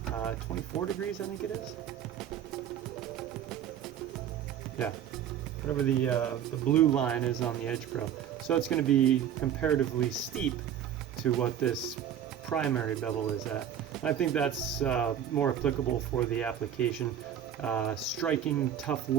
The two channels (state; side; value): quieter; left; 9.6 dB